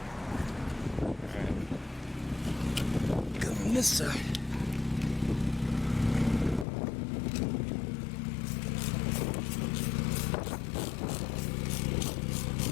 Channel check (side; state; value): right; drops out; at 6.7 s